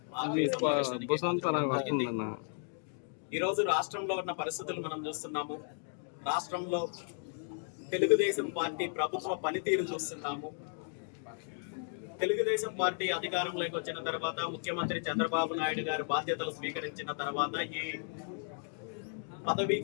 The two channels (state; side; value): silent; right; 55 dB below the other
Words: ఈరోజు రాష్ట్రంలో ఉన్న పరిస్థితులు మనం చూస్తున్నాము. రాష్ట్రంలో తెలుగుదేశం పార్టీ ప్రభుత్వ పనితీరు చూస్తున్నాము. తెలుగుదేశం పార్టీ అధికారంలోకి వచ్చిన తర్వాత, ముఖ్యమంత్రి చంద్రబాబు నాయుడు గారు బాధ్యతలు స్వీకరించిన తర్వాత ఈ పదవీ